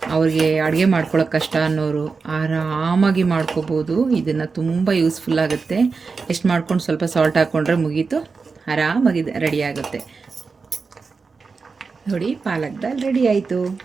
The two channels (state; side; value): quieter; left; 4.7 dB